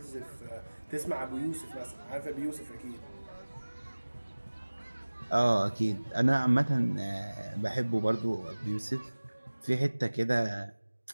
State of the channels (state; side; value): inverted; both; correlation -1.00